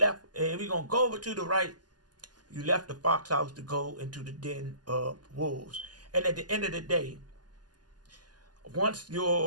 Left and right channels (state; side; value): late; left; 0.70 ms